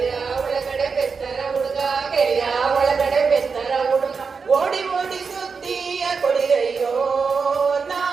ಒಳಗಡೆ ಬೆಸ್ತರ ಹುಡುಗ. ಕೆರೆಯ ಒಳಗಡೆ ಬೆಸ್ತರ ಹುಡುಗ. ಓಡಿ ಓಡಿ ಸುದ್ದಿಯ ಕೊಡಿರಯ್ಯೋ ನಾ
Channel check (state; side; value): quieter; left; 5.2 dB